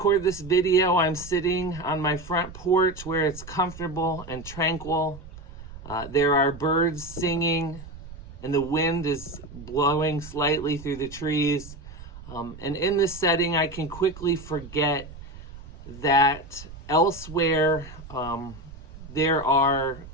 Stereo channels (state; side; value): noise; right; rumble, 15 dB below the sound